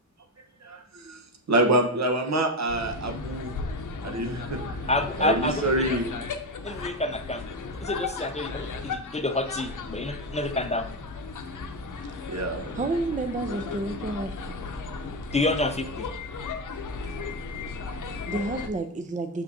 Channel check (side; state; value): both; normal; correlation 0.13